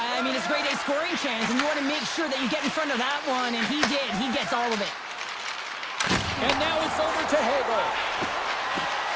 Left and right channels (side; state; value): both; identical; correlation 1.00